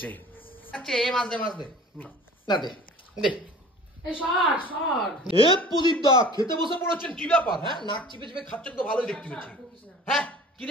আচ্ছা এই মাছ দে, মাছ দে না, দে দে। প্রদীপ দা খেতে বসে পড়েছেন, কি ব্যাপার? হ্যাঁ, নাক চিপে চিপে খাচ্ছেন তো ভালোই দেখতে পাচ্ছি। হ্যাঁ, কি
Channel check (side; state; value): both; normal; correlation 0.44